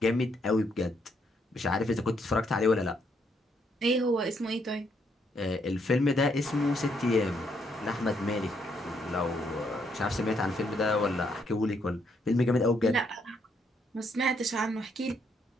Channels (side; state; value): both; normal; correlation 0.74